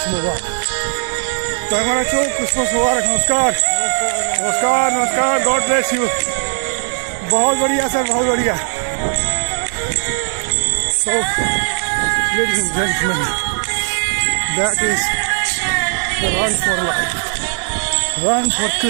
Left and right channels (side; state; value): left; silent; 61 dB below the other